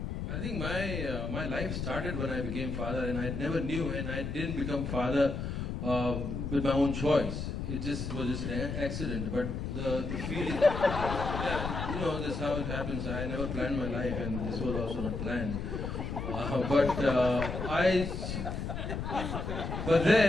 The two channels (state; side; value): noise; left; rumble, 4 dB below the sound